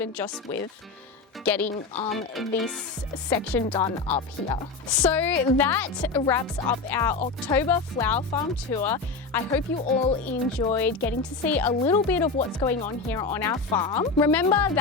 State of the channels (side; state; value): right; quieter; 4.2 dB